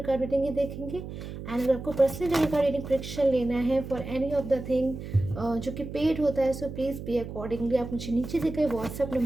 कार्ड रीडिंग ही देखेंगे। एंड अगर आपको personal tarot card reading prediction लेना है for any of the thing जो कि पेड होता है, सो प्लीज़ पे अकॉर्डिंगली आप मुझे नीचे दिए गए व्हाट्सअप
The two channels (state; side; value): noise; right; hum, 9 dB below the sound